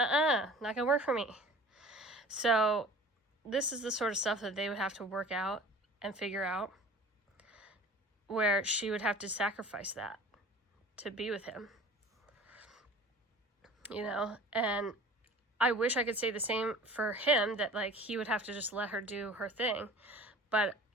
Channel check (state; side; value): normal; both; correlation 0.43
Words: gonna work for me. So this is the sort of stuff that they would have to work out and figure out, where she would have to sacrifice that to be with him. You know, and I wish I could say the same for him, that, like, he would have to just let her do her thing. But